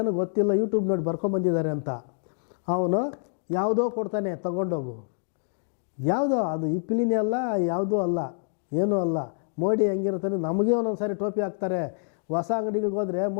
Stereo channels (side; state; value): right; silent; digital silence